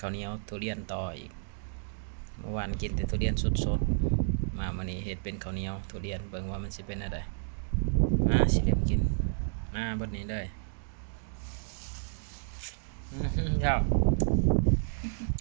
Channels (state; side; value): silent; left; digital silence